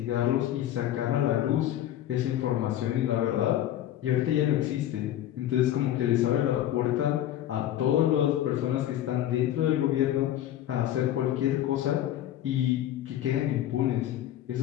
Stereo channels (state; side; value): quieter; right; 12.3 dB